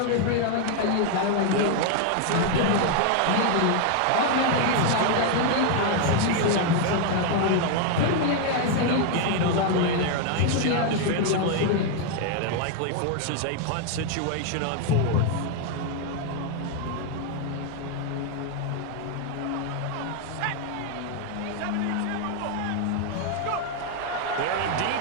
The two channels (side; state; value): both; different; correlation 0.00